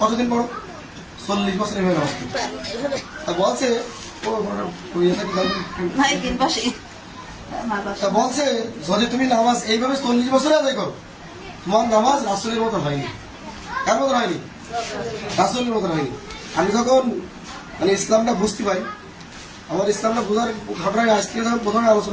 পড়ো? 40 বছর এইভাবে নামাজ পড়ছি। তা বলছে তা বলছে যদি তুমি নামাজ এইভাবে 40 বছরে আদায় করো, তোমার নামাজ রাসূলের মতো হয়নি। কার মতো হয়নি? রাসূলের মতো হয়নি। আমি যখন মানে ইসলামটা বুঝতে পারি, আমার ইসলামটা বোঝার ঘটনায় আজকে যখন প্রথমে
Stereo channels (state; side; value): identical; both; correlation 1.00